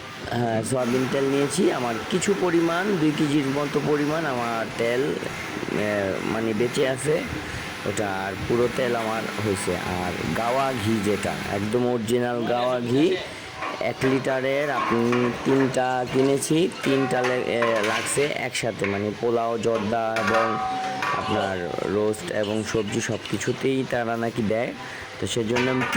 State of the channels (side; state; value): both; identical; correlation 1.00